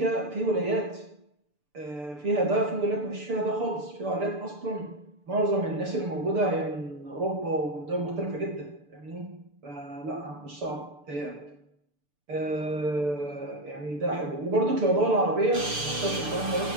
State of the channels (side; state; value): left; late; 6.8 ms